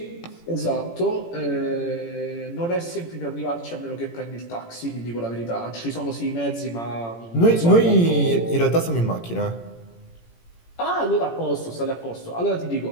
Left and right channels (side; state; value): right; late; 17 ms